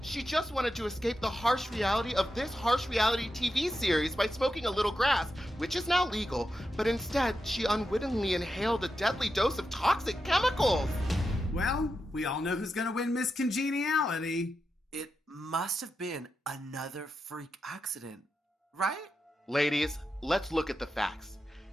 She just wanted to escape the harsh reality of this harsh reality TV series by smoking a little grass, which is now legal, but instead she unwittingly inhaled a deadly dose of toxic chemicals. Well, we all know who's gonna win Miss Congeniality. It must have been another freak accident, right? Ladies, let's look at the facts.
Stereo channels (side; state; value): both; normal; correlation 0.88